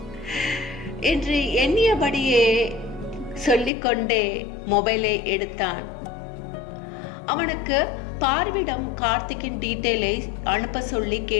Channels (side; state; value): right; drops out; at 3.7 s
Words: என்று எண்ணியபடியே சொல்லிக்கொண்டே மொபைலை எடுத்தான். அவனுக்கு பார்விடம் கார்த்திக்கின் டீட்டெயிலை அனுப்ப சொல்லி